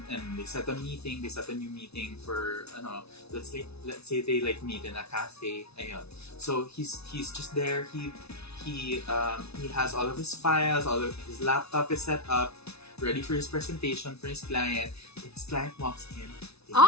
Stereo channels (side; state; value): right; late; 0.80 ms